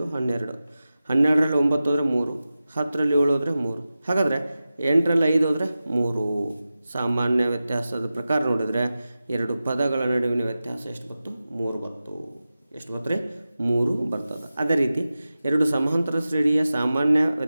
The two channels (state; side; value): inverted; both; correlation -0.94